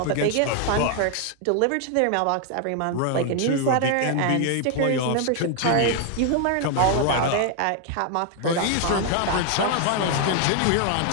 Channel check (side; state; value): both; different; correlation 0.00